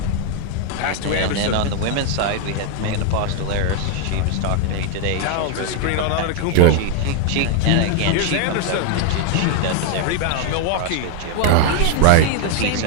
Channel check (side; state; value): both; different; correlation 0.01